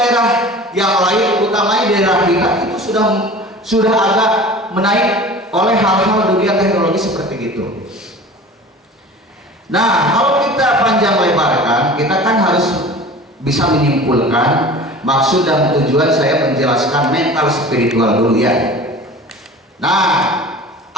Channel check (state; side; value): normal; both; correlation 0.40